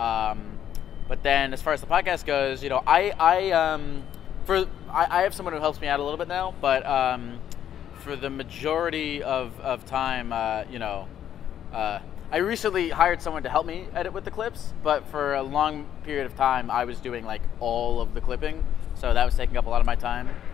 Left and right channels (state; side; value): quieter; right; 10.2 dB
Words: But then, as far as the podcast goes, I have someone who helps me out a little bit now, but for the majority of time, I recently hired someone to help me edit with the clips, but for a long period of time, I was doing all of the clipping, so that was taking up a lot of my time.